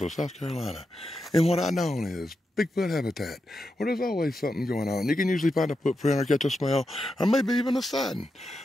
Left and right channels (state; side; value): normal; both; correlation 0.87